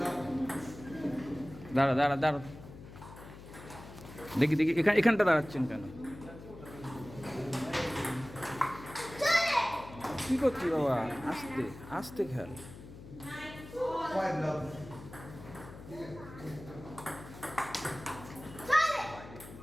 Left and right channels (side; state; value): left; noise; hum, 15 dB below the sound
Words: love. দাঁড়া দাঁড়া দাঁড়া, দেখি দেখি এখানটা দাঁড়াচ্ছেন কেন? কি করছি বাবা? আস্তে আস্তে খেয়াল। Five love.